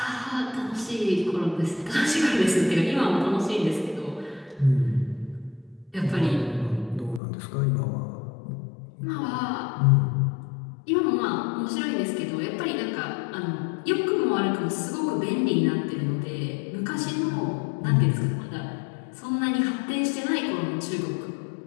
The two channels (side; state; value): right; drops out; at 7.2 s